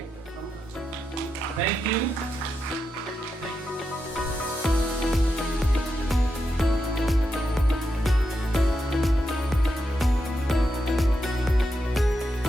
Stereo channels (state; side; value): normal; both; correlation 0.85